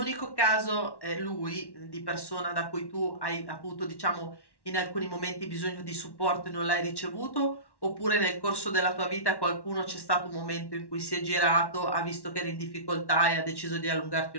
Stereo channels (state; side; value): late; right; 1.1 ms